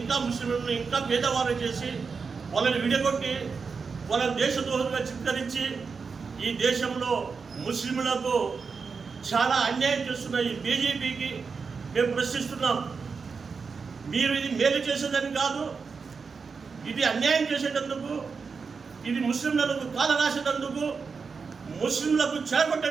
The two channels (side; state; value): left; quieter; 5.2 dB